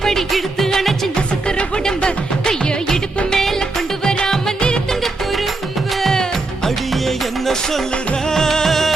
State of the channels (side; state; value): left; quieter; 3.3 dB